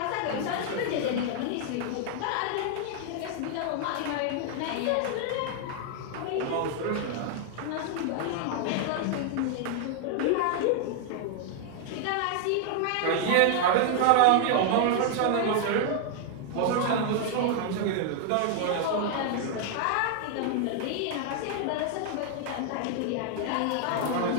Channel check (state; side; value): different; both; correlation 0.00